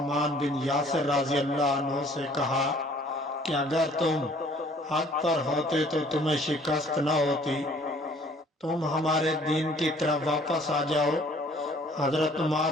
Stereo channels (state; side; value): normal; both; correlation 0.56